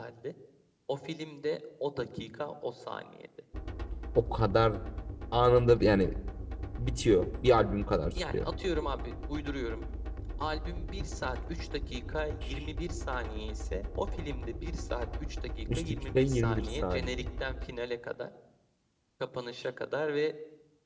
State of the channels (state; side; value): identical; both; correlation 1.00